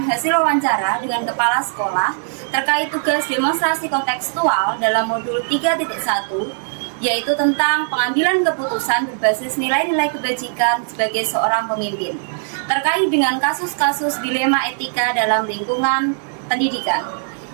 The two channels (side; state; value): left; silent; digital silence